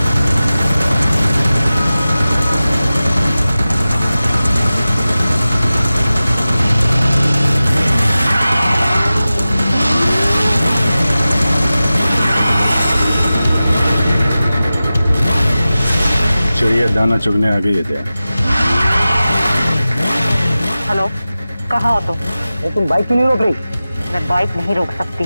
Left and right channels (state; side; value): inverted; both; correlation -0.95